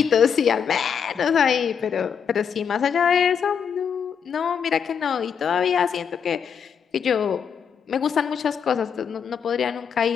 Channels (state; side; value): quieter; right; 7.2 dB